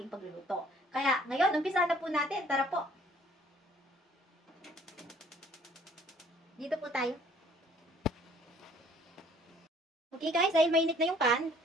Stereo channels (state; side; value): normal; both; correlation 0.58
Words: pagluluto. Kaya ngayon, umpisa na po natin. Tara po. Dito po tayo. Okay guys, dahil mainit na yung pan,